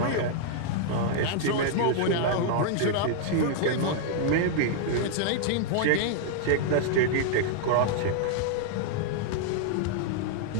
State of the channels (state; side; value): different; both; correlation -0.01